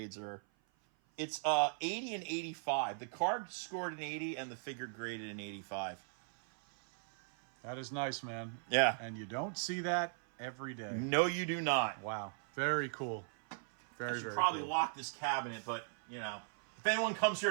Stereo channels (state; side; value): silent; left; 52 dB below the other